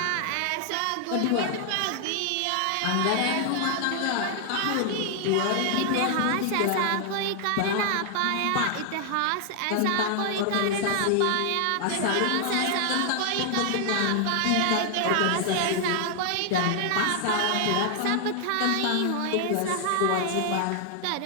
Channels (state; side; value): different; both; correlation 0.00